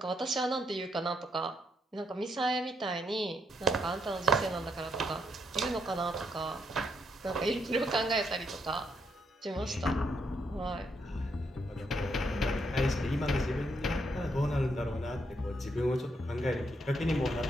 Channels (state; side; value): normal; both; correlation 0.76